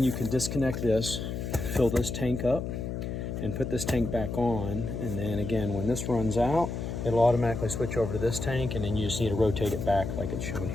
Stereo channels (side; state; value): left; noise; hum, 4 dB below the sound